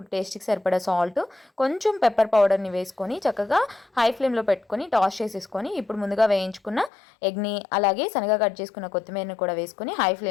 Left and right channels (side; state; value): right; drops out; at 6.9 s